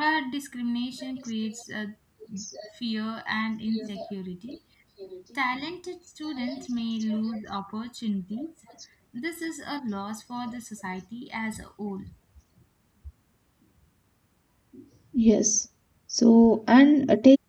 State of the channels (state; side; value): identical; both; correlation 1.00